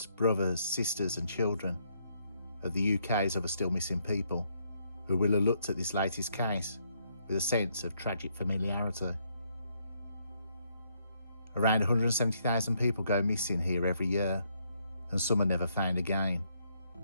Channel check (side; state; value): both; inverted; correlation -0.74